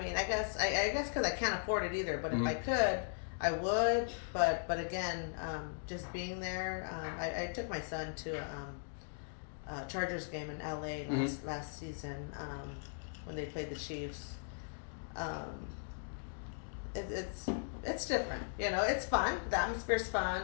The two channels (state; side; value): silent; right; digital silence